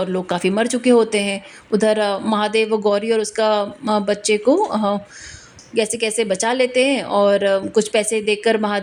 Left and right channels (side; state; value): both; identical; correlation 1.00